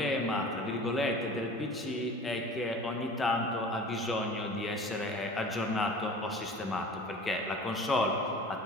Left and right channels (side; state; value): both; normal; correlation 0.41